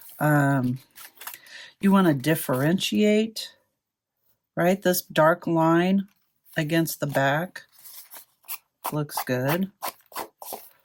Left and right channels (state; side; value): identical; both; correlation 1.00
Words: you want to differentiate, right? This dark line against the back looks good.